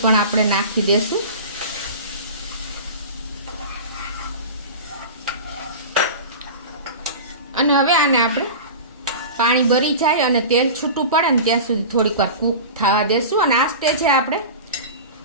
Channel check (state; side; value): inverted; both; correlation -0.32